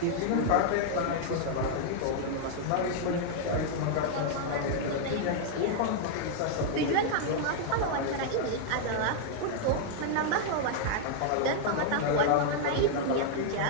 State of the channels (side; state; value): both; different; correlation -0.01